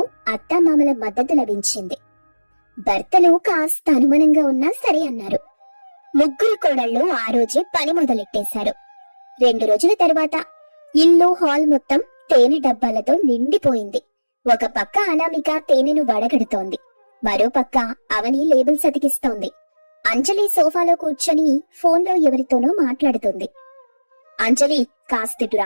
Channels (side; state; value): both; inverted; correlation -1.00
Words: అత్తామామల మద్దతు లభించింది. భర్తలు కాస్త అనుమానంగా ఉన్నా సరే అన్నారు. ముగ్గురు కోడళ్ళు ఆ రోజే పని మొదలెట్టేశారు. 2 రోజుల తర్వాత ఇల్లు, హాల్ మొత్తం తేనె డబ్బాలతో నిండిపోయింది. ఒక పక్క అనామిక తేనెను వడగడుతోంది. మరో పక్క అవని లేబుల్స్ అతికిస్తోంది. అంజలి సోఫాలో కూర్చొని ఫోన్లో ఎవరితోనో మాట్లాడుతుంది. అంజలి, కాస్తిటు